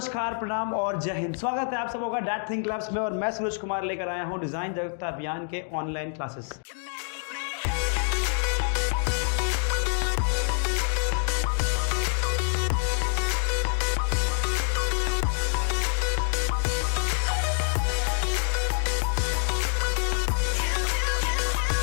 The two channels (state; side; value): silent; right; digital silence